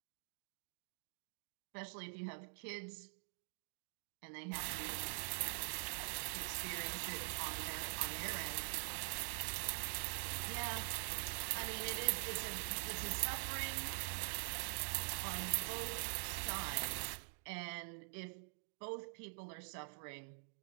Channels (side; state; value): left; silent; digital silence